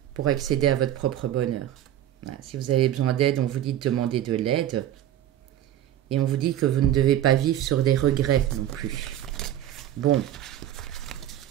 pour accéder à votre propre bonheur. Voilà. Si vous avez besoin d'aide, on vous dit de demander de l'aide. Et on vous dit que vous ne devez pas vivre sur des regrets non plus. Bon.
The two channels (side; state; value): left; quieter; 11.8 dB